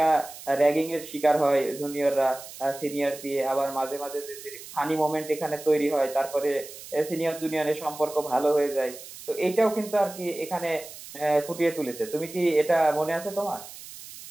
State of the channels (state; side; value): noise; right; hiss, 15 dB below the sound